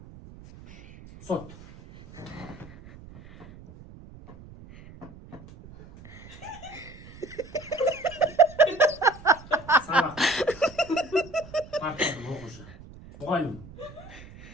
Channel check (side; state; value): right; noise; rumble, 18 dB below the sound